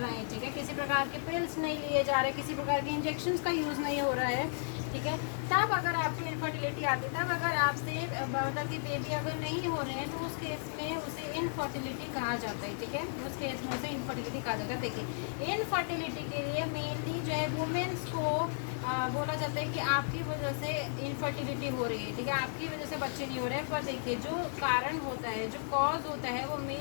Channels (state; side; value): silent; right; digital silence